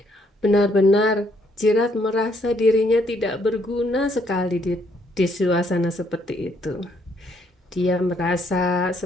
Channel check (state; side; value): normal; both; correlation 0.70